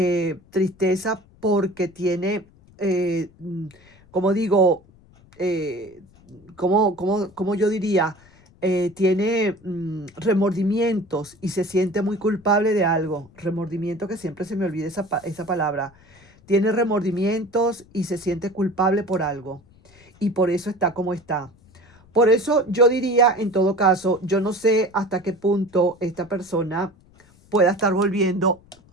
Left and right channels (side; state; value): left; noise; rumble, 28 dB below the sound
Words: tristeza porque tiene, como digo, eh, como yo diría, tiene remordimientos y se siente muy culpable de algo. Remordimiento, que siempre se me olvida esa palabra. Tiene remordimientos y se siente culpable por algo. Y por eso está como está. Por eso yo diría, en todo caso, yo no sé hasta qué punto esta persona pueda estar volviendo